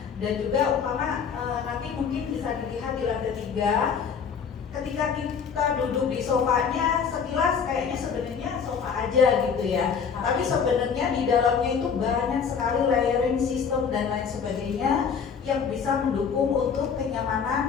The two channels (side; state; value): right; quieter; 6.6 dB